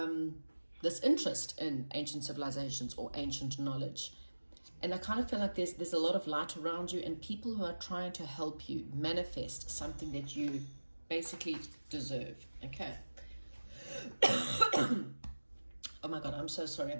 interest in ancient civilizations or ancient knowledge, and I kind of feel like there's a lot of light around you and people who are trying to help you manifest something that you basically deserve. Okay. Oh my god, I'm so sorry,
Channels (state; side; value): inverted; both; correlation -1.00